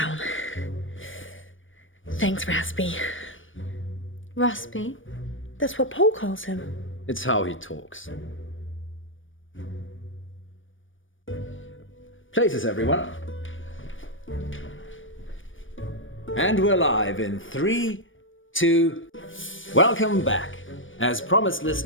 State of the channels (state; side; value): late; right; 0.57 ms